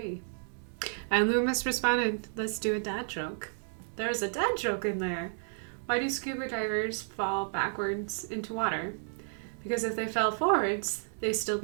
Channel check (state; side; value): silent; left; 57 dB below the other